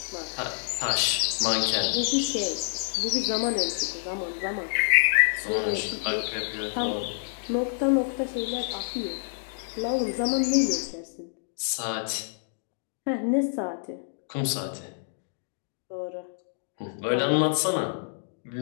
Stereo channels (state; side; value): silent; right; digital silence